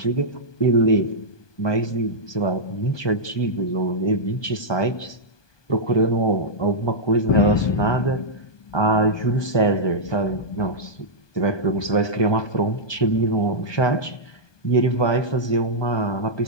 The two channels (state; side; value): late; right; 1.2 ms